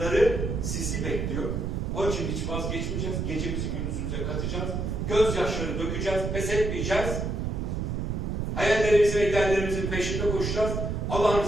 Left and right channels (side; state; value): right; noise; rumble, 1 dB below the sound